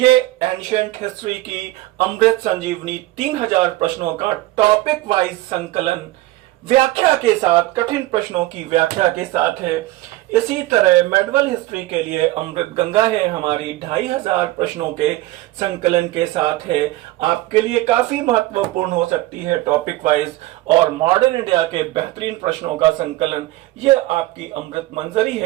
एंशिएंट हिस्ट्री की अमृत संजीवनी 3000 प्रश्नों का टॉपिक वाइज संकलन व्याख्या के साथ, कठिन प्रश्नों की व्याख्या के साथ है। इसी तरह मेडिवल हिस्ट्री के लिए अमृत गंगा है हमारी, 2500 प्रश्नों के संकलन के साथ है। आपके लिए काफी महत्वपूर्ण हो सकती है टॉपिक वाइज। और मॉडर्न इंडिया के बेहतरीन प्रश्नों का संकलन, ये आपकी अमृत मंजरी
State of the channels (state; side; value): quieter; left; 17.7 dB